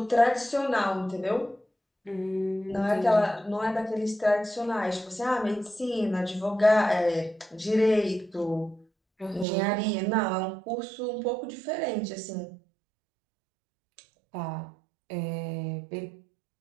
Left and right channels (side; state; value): left; drops out; at 9.5 s